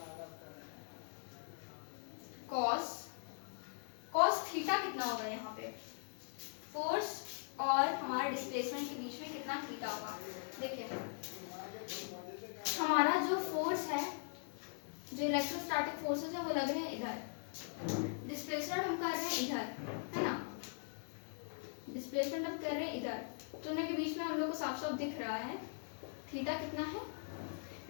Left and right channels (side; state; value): right; silent; digital silence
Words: cos theta कितना होगा यहाँ पे? फोर्स और हमारा डिस्प्लेसमेंट के बीच में कितना थीटा होगा? देखिए हमारा जो फोर्स है, जो इलेक्ट्रोस्टैटिक फोर्सेस है वो लग रहे हैं इधर, डिस्प्लेसमेंट हम कर रहे हैं इधर, है ना। डिस्प्लेसमेंट हम कर रहे हैं इधर, तो उनके बीच में हम लोग को साफ साफ दिख रहा है थीटा कितना है?